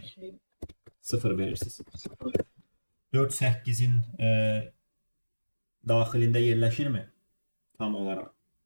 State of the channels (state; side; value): inverted; both; correlation -1.00